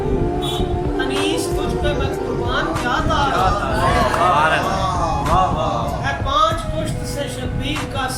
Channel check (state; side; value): identical; both; correlation 1.00